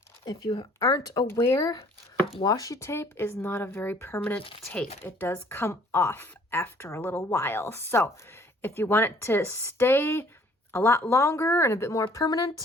if you aren't aware, washi tape is not a very permanent tape. It does come off after a little while. So if you want it to stay a lot longer and a bit more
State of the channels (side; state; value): both; normal; correlation 0.58